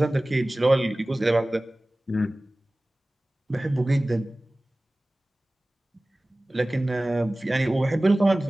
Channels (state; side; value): normal; both; correlation 0.98